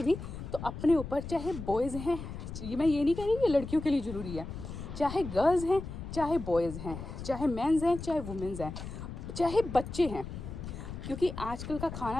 भी, तो अपने ऊपर, चाहे बॉयज़ हैं, मैं ये नहीं कह रही कि लड़कियों के लिए ज़रूरी है, चाहे गर्ल्स हैं, चाहे बॉयज़ हैं, चाहे मेंस हैं, चाहे वुमेंस हैं, चाहे बच्चे हैं, क्योंकि आजकल का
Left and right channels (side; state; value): left; noise; rumble, 9 dB below the sound